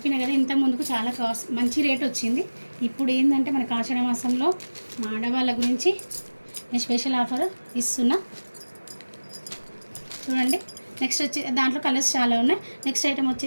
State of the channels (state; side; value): inverted; both; correlation -1.00